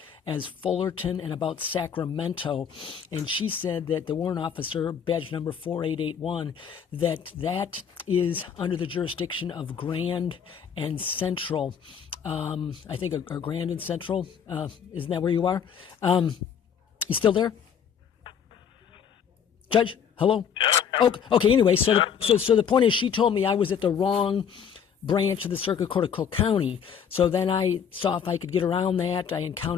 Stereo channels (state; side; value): quieter; right; 7.6 dB